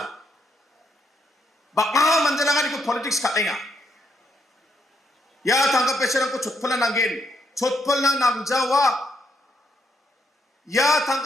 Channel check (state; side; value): normal; both; correlation 0.76